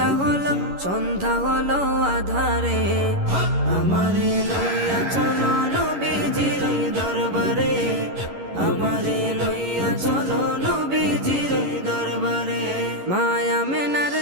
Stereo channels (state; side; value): late; left; 11 ms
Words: হলো, সন্ধ্যা হলো আধারে। আমারে লইয়া চলো নবীজির দরবারে, আমারে লইয়া চলো নবীজির দরবারে। মায়া মেনার